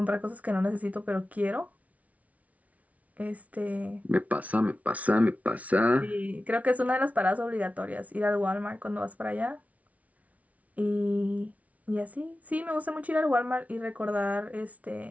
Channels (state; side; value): late; left; 0.069 ms